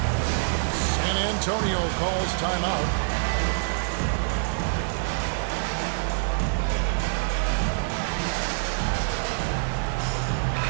San Antonio calls timeout.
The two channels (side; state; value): left; silent; digital silence